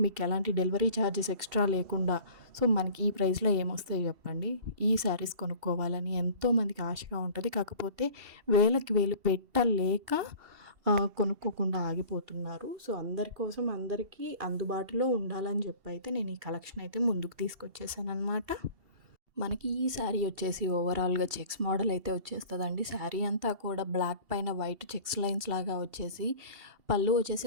మీకు ఎలాంటి డెలివరీ ఛార్జెస్ ఎక్స్ట్రా లేకుండా. సో మనకి ఈ ప్రైస్లో ఏమొస్తాయి చెప్పండి. ఈ శారీస్ కొనుక్కోవాలని ఎంతోమందికి ఆశగా ఉంటుంది, కాకపోతే వేలకి వేలు పెట్టలేక కొనుక్కోకుండా ఆగిపోతున్నారు. సో అందరి కోసం, అందరికీ అందుబాటులో ఉండాలని చెప్పి అయితే నేను ఈ కలెక్షన్ అయితే ముందుకు తీసుకొచ్చేసాను అనమాట. మనకి ఈ శారీ వచ్చేసి ఓవరాల్గా చెక్స్ మోడల్ అయితే వచ్చేస్తుందండి. శారీ అంతా కూడా బ్లాక్ పైన వైట్ చెక్స్ లైన్స్ లాగా వచ్చేసి, పళ్ళు వచ్చేసి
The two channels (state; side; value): late; left; 2.7 ms